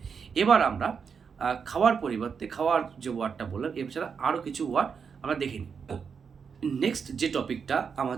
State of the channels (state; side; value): quieter; left; 6.2 dB